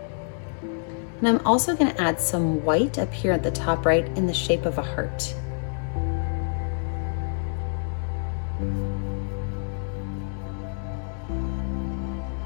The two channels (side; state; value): right; silent; digital silence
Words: And I'm also going to add some white up here at the top right in the shape of a heart.